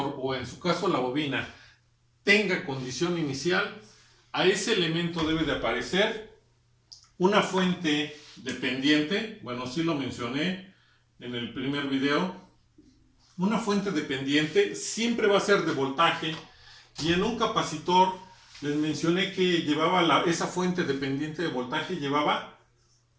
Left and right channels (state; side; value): identical; both; correlation 1.00